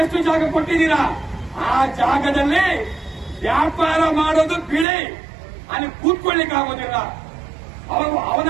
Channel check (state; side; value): drops out; left; at 4.9 s